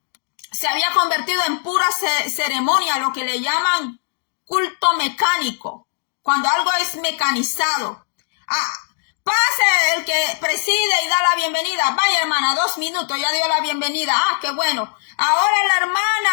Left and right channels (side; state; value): right; silent; 65 dB below the other